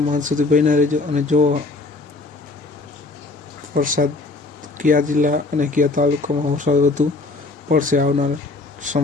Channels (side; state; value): right; quieter; 3.4 dB